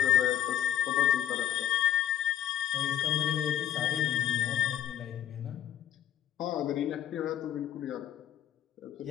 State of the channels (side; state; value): right; quieter; 10.5 dB